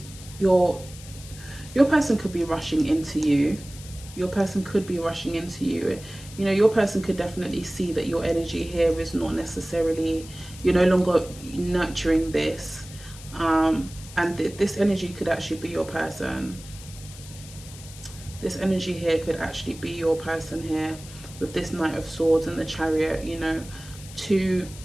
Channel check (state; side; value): noise; left; hiss, 17 dB below the sound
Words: Your person could be rushing into you. Your person could be rushing into you. You know, your person could definitely see that your energy here is not necessarily, you're no longer nurturing this. And this energy could actually be your person. This energy here could actually be your person here, with this Knight of Swords and the Chariot. You know, two